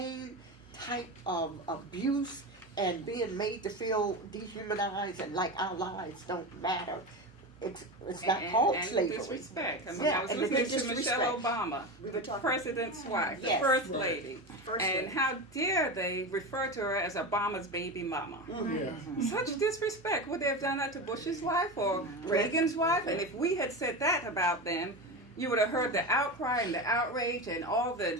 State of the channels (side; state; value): both; normal; correlation 0.22